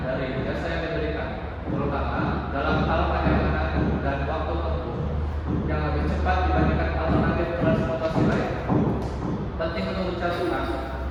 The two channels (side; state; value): both; identical; correlation 1.00